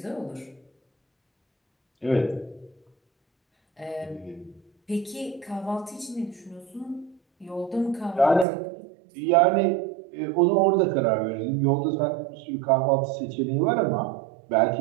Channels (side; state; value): left; drops out; at 8.5 s